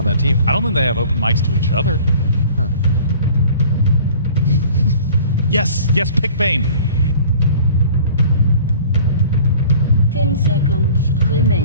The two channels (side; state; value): both; inverted; correlation -0.47